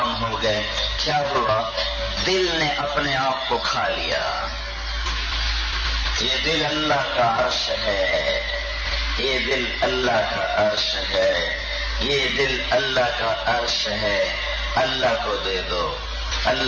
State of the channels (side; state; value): both; identical; correlation 1.00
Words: ہو گئے. کیا ہوا؟ دل نے اپنے آپ کو کھا لیا. یہ دل اللہ کا عرش ہے، یہ دل اللہ کا عرش ہے، یہ دل اللہ کا عرش ہے. اللہ کو دے دو،